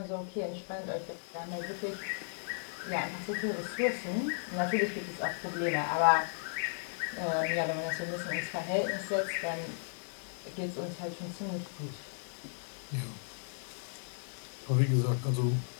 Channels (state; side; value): silent; right; digital silence